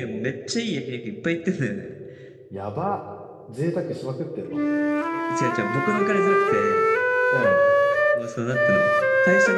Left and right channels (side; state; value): both; identical; correlation 1.00